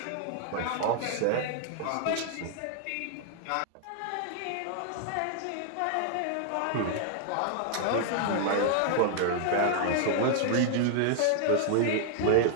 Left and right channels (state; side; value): different; both; correlation 0.00